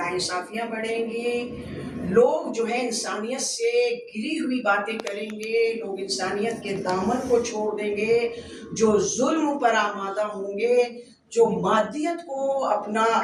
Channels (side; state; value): both; identical; correlation 1.00